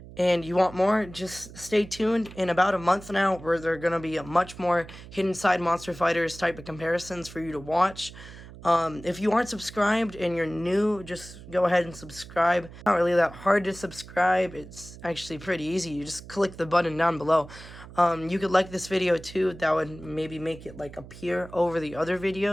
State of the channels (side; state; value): right; noise; hum, 16 dB below the sound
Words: and you want more, just stay tuned. In about a month now, where there are going to be a much more Hidden Side Monster Fighters type of comparisons for you to watch. If you aren't subscribed and you're new, just go ahead and subscribe. It's not really that hard to subscribe. It's actually pretty easy. You just click the button down below. You could like this video too. That would maybe make it like appear over the other